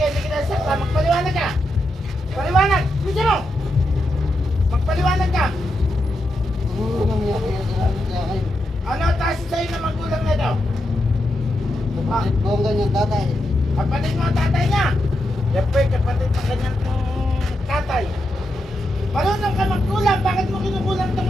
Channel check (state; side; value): normal; both; correlation 0.85